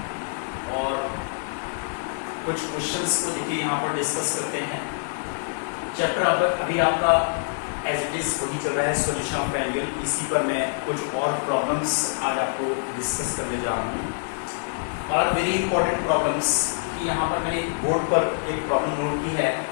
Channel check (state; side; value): silent; right; digital silence